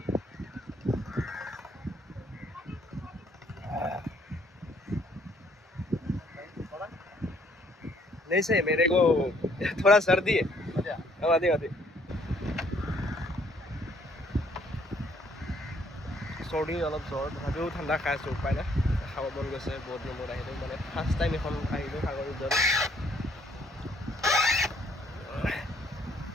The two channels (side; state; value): both; normal; correlation 0.65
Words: नहीं सही मेरे को थोड़ा सर्दी है आधी आधी सर्दी अलग ज्वर तथापिও ঠাণ্ডা খাই আছোঁ উপায় নাই খাব মন গৈছে বহুত দিন মূৰত আহিলোঁ মানে ফাৰ্ষ্ট টাইম এখন আহিলোঁ সাগৰ ৰিজৰ্ট